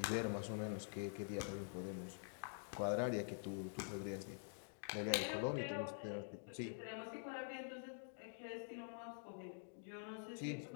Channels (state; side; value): silent; right; digital silence